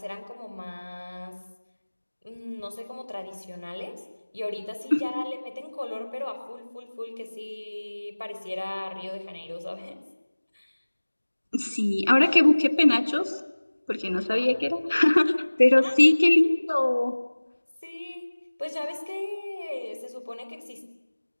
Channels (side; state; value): both; inverted; correlation -1.00